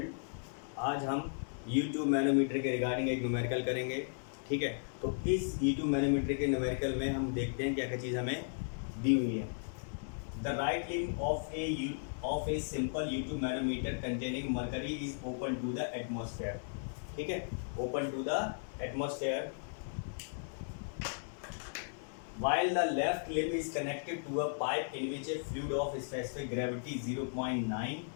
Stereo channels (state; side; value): silent; right; 54 dB below the other